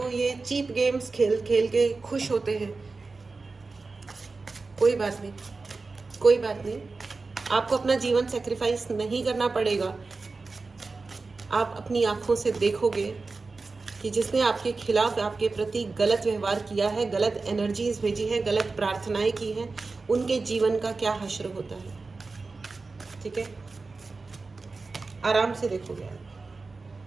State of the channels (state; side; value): quieter; left; 3.9 dB